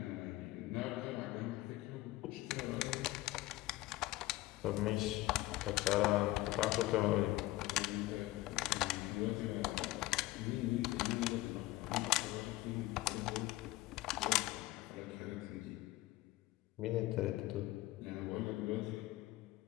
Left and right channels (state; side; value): quieter; right; 17.9 dB